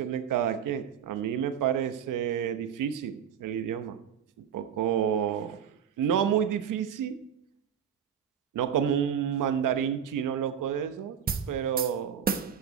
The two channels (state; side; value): quieter; left; 8.4 dB